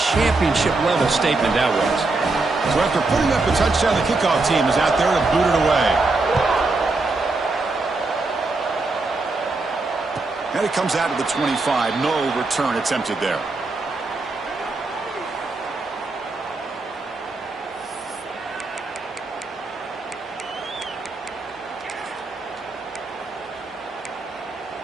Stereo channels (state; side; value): quieter; left; 3.4 dB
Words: championship-level statement that was. So after putting up a touchdown, the kickoff team is out there to boot it away. And it comes out of the 25. No return attempted there.